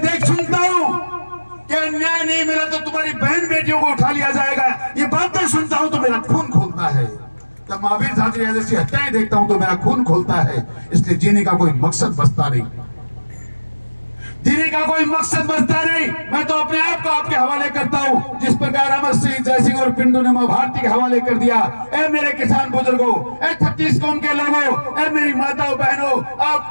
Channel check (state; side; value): inverted; both; correlation -1.00